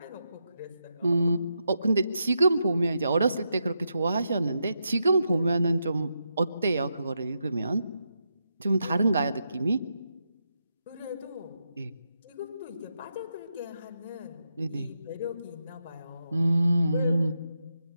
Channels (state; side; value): inverted; both; correlation -0.84